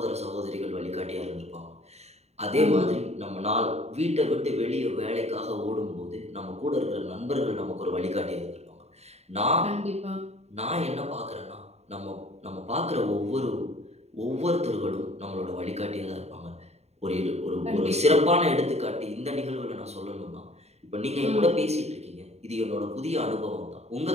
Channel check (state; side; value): late; left; 0.31 ms